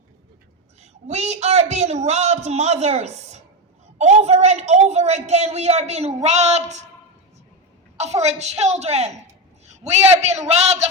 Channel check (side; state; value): both; normal; correlation 0.13